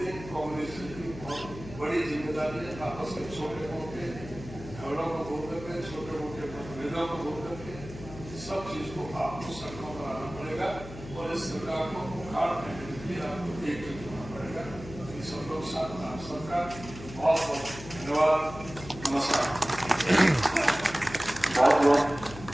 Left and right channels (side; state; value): left; noise; hum, 13 dB below the sound